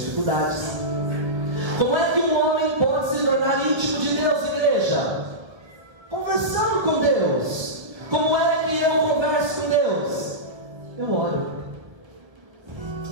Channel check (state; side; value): late; left; 1.1 ms